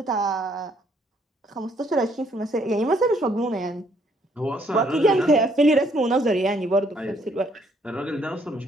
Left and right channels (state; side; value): normal; both; correlation 0.67